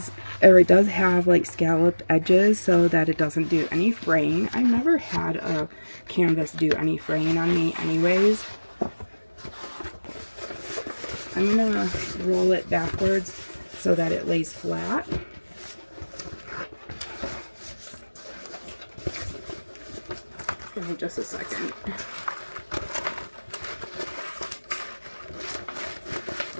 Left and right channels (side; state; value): both; inverted; correlation -1.00